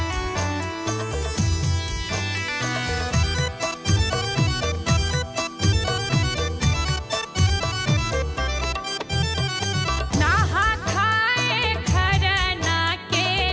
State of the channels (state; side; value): identical; both; correlation 1.00